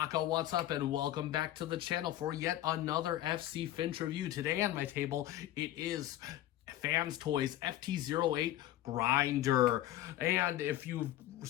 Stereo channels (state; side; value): quieter; right; 13.8 dB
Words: what's up, and welcome back to the channel for yet another FC Finch review. Today on my table, it is Fans Toys FT08 Grinder. And if you've